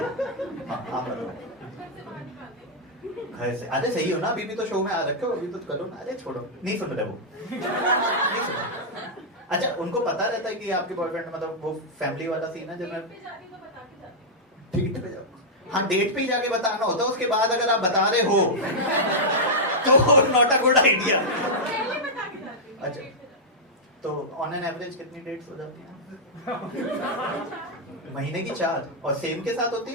घर से अरे सही हो ना, अभी भी तो शो में आ रखे हो, अभी तो करो ना। अरे छोड़ो, नहीं सुन रहे वो, नहीं सुन रहे। अच्छा उनको पता रहता है कि आपके बॉयफ्रेंड मतलब वो फैमिली वाला सीन है जब मैं डेट पे जाऊँ? हाँ डेट पे ही जाके बताना होता है, उसके बाद अगर आप बता रहे हो तो नॉट अ गुड आइडिया। अच्छा तो ऑन एन एवरेज कितनी डेट्स हो जाती हैं? महीने की 4 और सेम के साथ होती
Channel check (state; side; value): normal; both; correlation -0.07